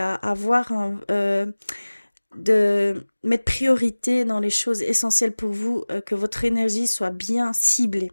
avoir de mettre priorité dans les choses essentielles pour vous, que votre énergie soit bien ciblée.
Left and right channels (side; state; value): both; inverted; correlation -1.00